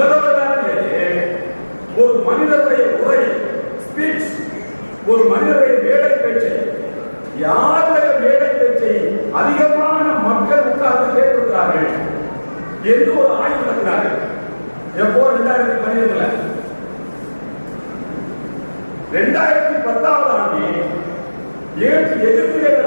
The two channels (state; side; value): inverted; both; correlation -1.00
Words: வரலாற்றிலேயே ஒரு மனிதனுடைய உரை, ஸ்பீச், ஒரு மனிதனுடைய மேடை பேச்சை, யாருடைய மேடை பேச்சை அதிகமான மக்கள் உட்கார்ந்து கேட்டிருக்கிறார்கள் என்று ஒரு ஆய்வு நடத்தினார்கள். எப்போ? 2012. 2010ஆம் ஆண்டில் எகிப்திலே